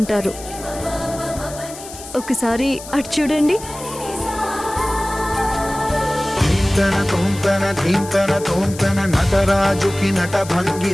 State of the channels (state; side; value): noise; left; hiss, 14 dB below the sound